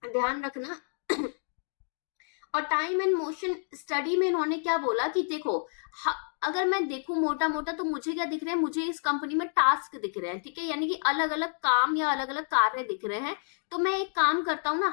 ध्यान रखना। और टाइम एंड मोशन स्टडी में इन्होंने क्या बोला कि देखो, अगर मैं देखूं मोटा मोटा तो मुझे क्या दिख रहा है, मुझे इस कंपनी में टास्क दिख रहे हैं। ठीक है, यानी कि अलग अलग काम या अलग अलग कार्य दिख रहे हैं। तो मैं एक काम करता हूँ ना,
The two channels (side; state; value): right; silent; 58 dB below the other